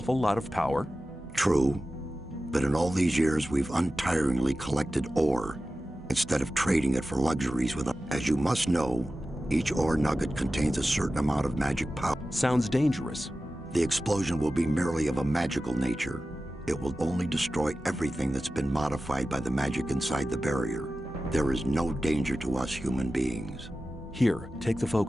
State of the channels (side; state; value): both; normal; correlation 0.94